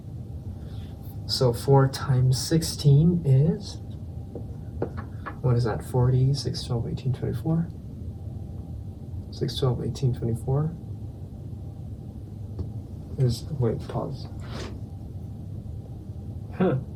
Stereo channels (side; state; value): both; identical; correlation 1.00